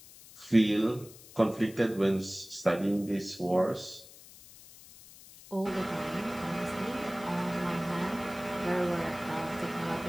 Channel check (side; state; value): left; noise; hiss, 20 dB below the sound